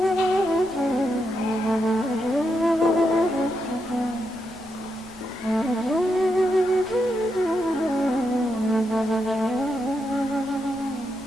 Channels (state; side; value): noise; left; rumble, 27 dB below the sound